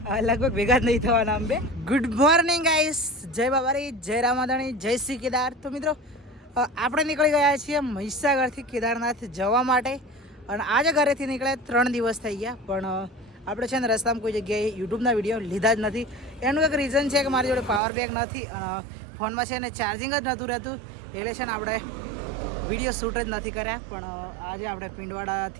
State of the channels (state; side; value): drops out; left; at 17.8 s